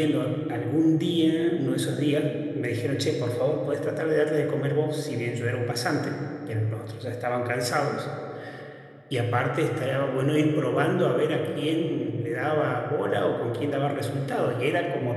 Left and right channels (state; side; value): identical; both; correlation 1.00